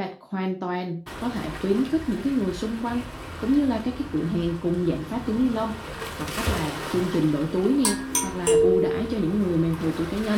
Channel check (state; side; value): identical; both; correlation 1.00